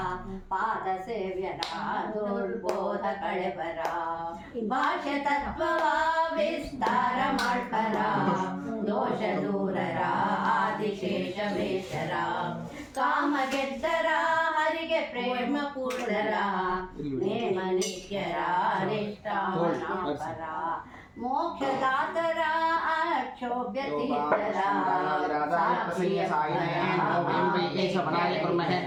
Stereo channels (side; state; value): both; identical; correlation 1.00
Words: ಪಾದ ಸೇವ್ಯರ ದುರ್ಬೋಧ ಕಳೆಬರ ಭಾಷ್ಯ ತತ್ವವ ವಿಸ್ತಾರ ಮಾಡ್ಪರ ದೋಷ ದೂರರ ಆದಿಶೇಷ ವೇಷರ ಕಾಮ ಗೆದ್ದರ ಹರಿಗೆ ಪ್ರೇಮ ಪೂರ್ಣರ ನೇಮ ನಿತ್ಯರ ನಿಷ್ಠಾವನಾಪರ ಮೋಕ್ಷದಾತರ ಅಕ್ಷೋಭ್ಯ ತೀರ್ಥರ